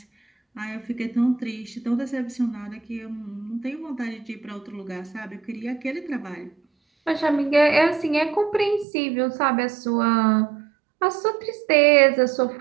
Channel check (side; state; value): left; drops out; at 8.8 s